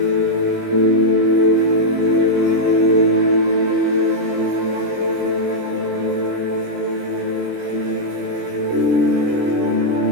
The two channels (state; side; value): late; left; 17 ms